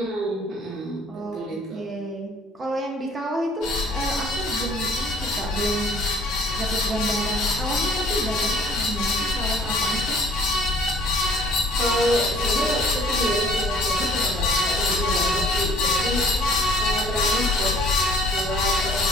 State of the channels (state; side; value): normal; both; correlation 0.55